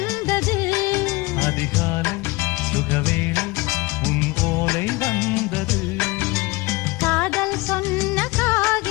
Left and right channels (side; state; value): right; quieter; 22.8 dB